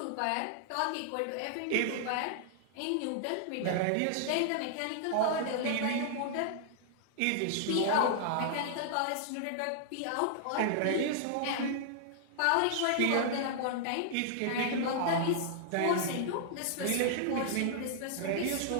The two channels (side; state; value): both; different; correlation -0.01